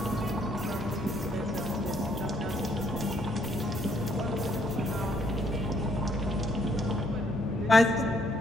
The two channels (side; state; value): both; normal; correlation 0.69